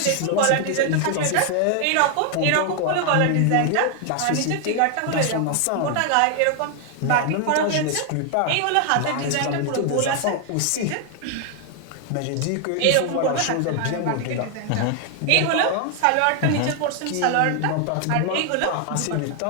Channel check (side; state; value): both; different; correlation 0.00